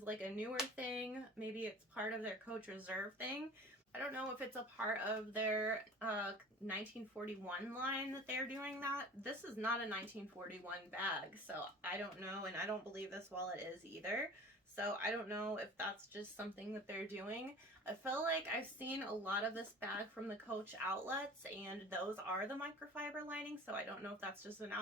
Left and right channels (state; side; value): normal; both; correlation 0.41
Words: like a newer thing. Maybe it's part of their Coach Reserve thing. I don't know if it's a part of their 1941 line that they're doing that. This is not a 1941 bag, so I don't know, and I don't believe this wallet is either. So I don't know if that's just something that they're doing. I feel like I've seen a lot of this bag from the Coach outlets, and those are the microfiber lining, so I don't know if that's just an